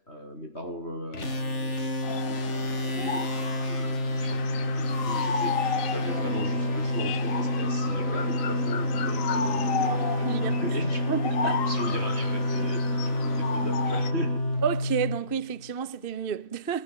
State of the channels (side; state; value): right; late; 3.4 ms